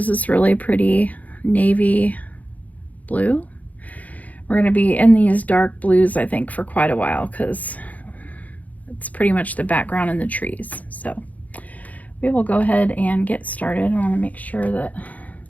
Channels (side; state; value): right; late; 0.075 ms